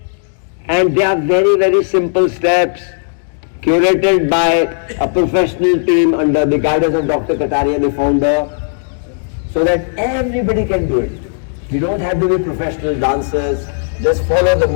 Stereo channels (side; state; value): right; silent; digital silence